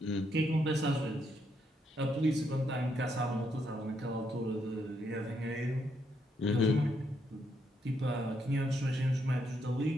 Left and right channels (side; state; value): both; normal; correlation 0.76